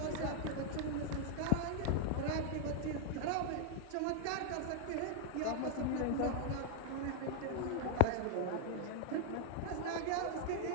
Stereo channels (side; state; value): both; different; correlation -0.01